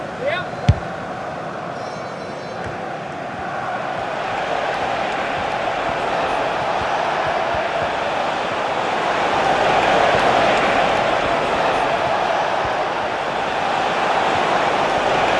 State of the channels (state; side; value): identical; both; correlation 1.00